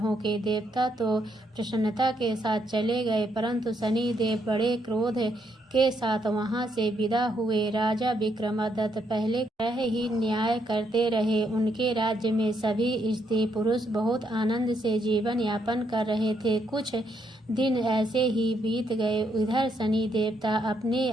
के देवता तो प्रसन्नता के साथ चले गए, परंतु शनि देव बड़े क्रोध के साथ वहां से विदा हुए। राजा विक्रमादित्य पहले तरह ही न्याय करते रहे। उनके राज्य में सभी स्त्री पुरुष बहुत आनंद से जीवन यापन कर रहे थे। कुछ दिन ऐसे ही बीत गए। इधर शनि देवता अपने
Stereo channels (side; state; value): both; normal; correlation 0.75